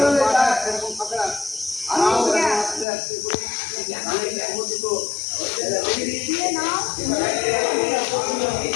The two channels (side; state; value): right; drops out; at 2.9 s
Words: এরকম ফাঁকা দিয়ে নাও।